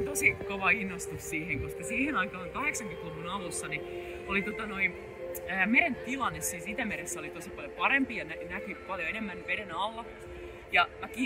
tosi kova innostus siihen, koska siihen aikaan 80-luvun alussa niin oli meren tilanne siis Itämeressä oli tosi paljon parempi ja näkyi paljon enemmän veden alla. Ja mä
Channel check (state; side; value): identical; both; correlation 1.00